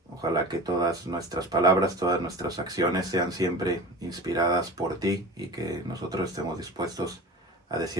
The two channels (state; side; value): normal; both; correlation 0.35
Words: Ojalá que todas nuestras palabras, todas nuestras acciones sean siempre inspiradas por ti y que nosotros estemos dispuestos a